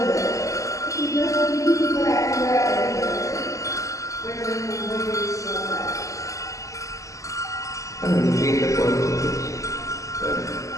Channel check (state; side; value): late; right; 0.16 ms